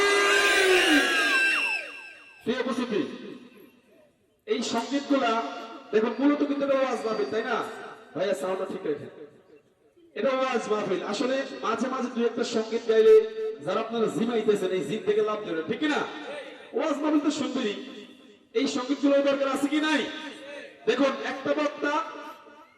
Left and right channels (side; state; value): both; identical; correlation 1.00